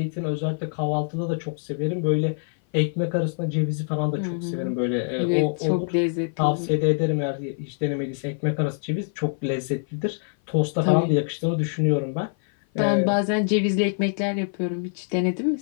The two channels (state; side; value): silent; right; 56 dB below the other